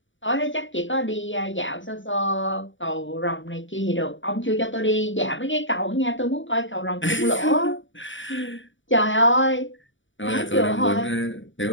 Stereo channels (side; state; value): right; late; 0.56 ms